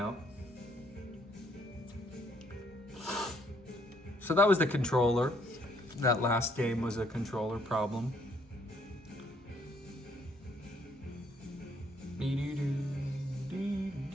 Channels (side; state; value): both; normal; correlation 0.67